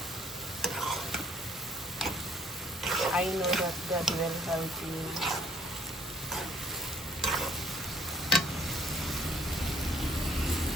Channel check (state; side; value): normal; both; correlation 0.61